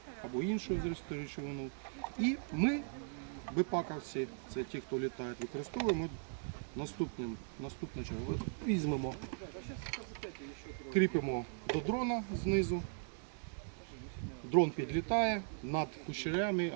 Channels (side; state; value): left; silent; digital silence